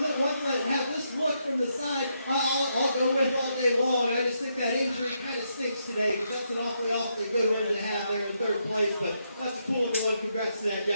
Ones that have this look from the side, I'll go with all day long. I just think that injury kind of stinks today, because that's an awfully good one to have there in third place. But that's a cool one. Congrats to that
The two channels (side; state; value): both; inverted; correlation -0.79